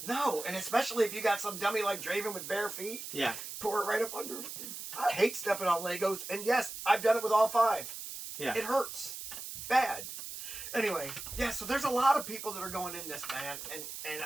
No, and especially if you got some dummy like Draven with bare feet. Yeah. Pour it right up under. I hate stepping on Legos, and yes, I've done it with all 5. Yeah. It hurts. Bad. Anyway, yeah, so there's a lot of people that are going in this, man, and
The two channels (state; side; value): noise; right; hiss, 9 dB below the sound